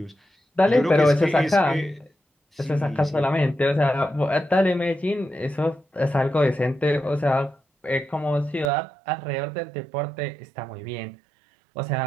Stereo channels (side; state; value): left; drops out; at 8.7 s